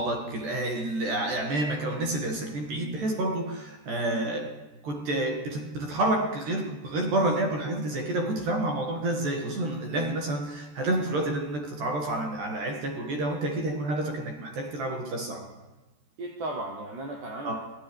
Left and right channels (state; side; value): late; left; 13 ms